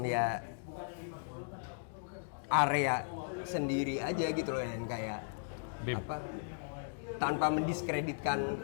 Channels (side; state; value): right; silent; digital silence